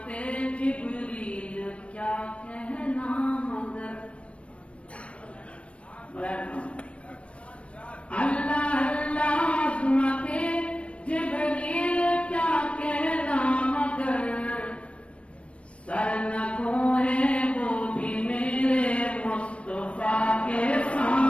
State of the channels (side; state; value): right; late; 0.061 ms